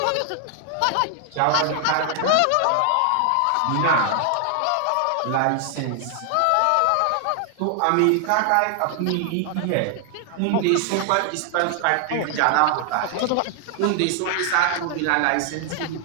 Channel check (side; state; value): both; different; correlation 0.00